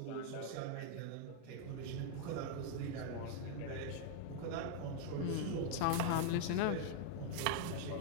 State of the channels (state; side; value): different; both; correlation 0.00